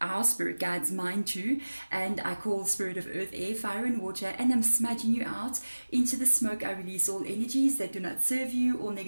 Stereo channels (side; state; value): both; inverted; correlation -1.00